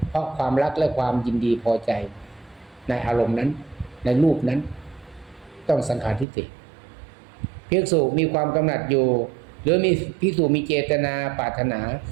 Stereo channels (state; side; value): drops out; left; at 6.2 s